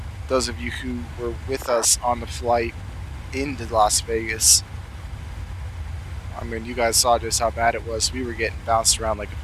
Those of you who were with us on the flight into Las Vegas, I mean, you guys saw just how bad it was. We were getting bounced around like a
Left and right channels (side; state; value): both; identical; correlation 1.00